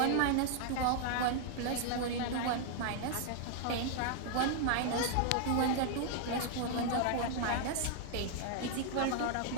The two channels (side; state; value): both; different; correlation 0.00